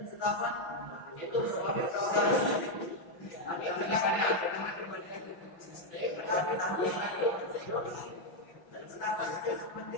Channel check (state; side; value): late; right; 5.9 ms